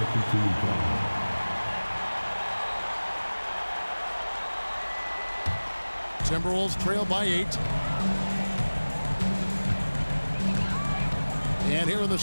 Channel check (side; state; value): both; inverted; correlation -1.00